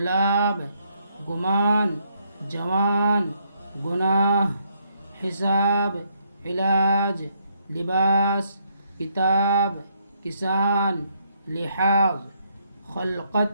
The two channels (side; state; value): both; inverted; correlation -0.73